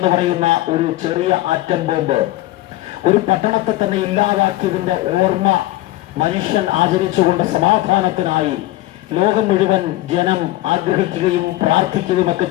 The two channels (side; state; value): right; quieter; 16.6 dB